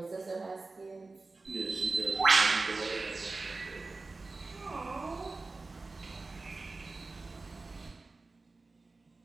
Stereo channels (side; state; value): left; quieter; 3.6 dB